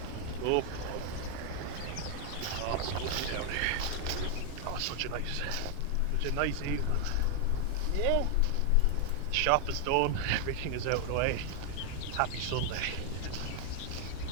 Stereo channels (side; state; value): both; different; correlation 0.00